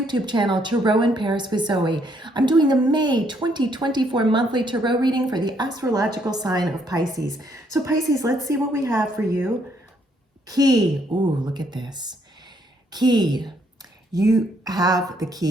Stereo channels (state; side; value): normal; both; correlation 0.70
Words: channel, Tarot in Paris with Zoe. I'm doing a May 2024 monthly tarot reading for the astrological sign of Pisces. So Pisces, let's see what we have for you. Key, ooh, look at this. Key, you have the